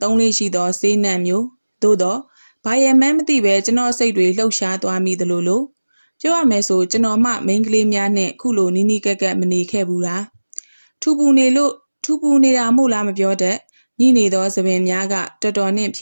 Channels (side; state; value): both; inverted; correlation -1.00